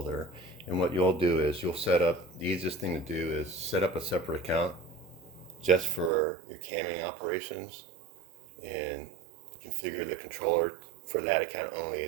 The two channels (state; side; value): drops out; left; at 6.1 s